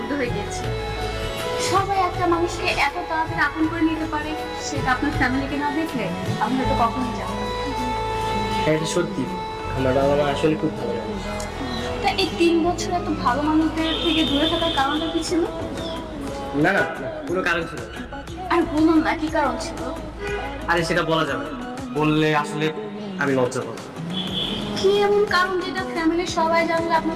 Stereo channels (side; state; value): both; identical; correlation 1.00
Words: হয়ে গিয়েছি। সবাই একটা মানুষকে এত তাড়াতাড়ি আপন করে নিতে পারে, সেটা আপনার ফ্যামিলিকে না দেখলে আমি হয়তো কখনোই জানতাম। হ্যাঁ, এটা সত্যি, আমার বাবা মা আসলে খুব ভালো মানুষ। তা এই 3 বছর এত ভালো মানুষদের থেকে দূরে থাকার কারণটা কি ছিল? না না, কোনো কারণ ছিল না। আর বলুন না, কি কারণ ছিল? আরে সেটা বলা যাবে না, বললে আসলে আমি লজ্জা পাবো। কি এমন কারণ যেটা ফ্যামিলির সবাই জানলে আপনার